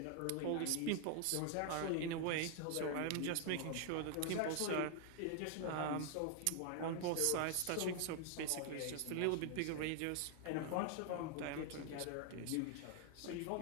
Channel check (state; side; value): different; both; correlation 0.00